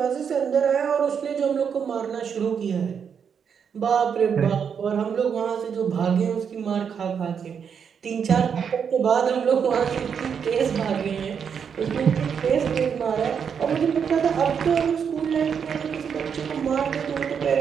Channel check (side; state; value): left; quieter; 7.1 dB